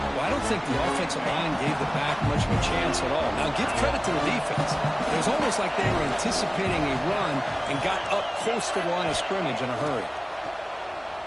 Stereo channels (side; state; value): both; identical; correlation 1.00